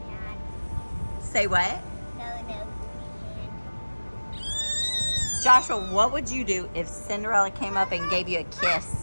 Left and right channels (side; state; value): both; inverted; correlation -1.00